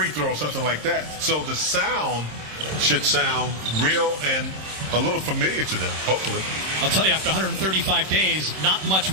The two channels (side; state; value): left; late; 26 ms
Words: throw or something like that. So the sound should sound real and a little familiar to them, hopefully. I'll tell you, after 135 days, not much